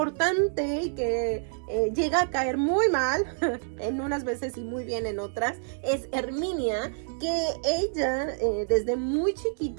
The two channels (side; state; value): left; silent; digital silence